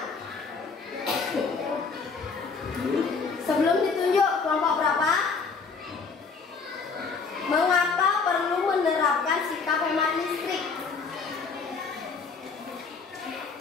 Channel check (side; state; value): right; quieter; 4.9 dB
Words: Sebelum ditunjuk kelompok berapa? Mengapa perlu menerapkan sikap hemat listrik?